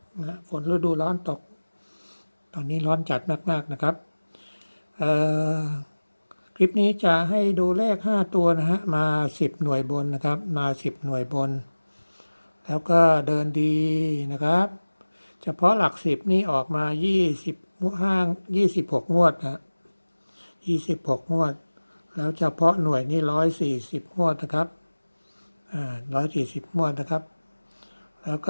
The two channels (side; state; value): both; inverted; correlation -1.00